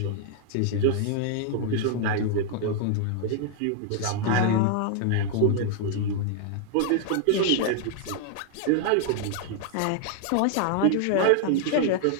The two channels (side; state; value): both; different; correlation 0.00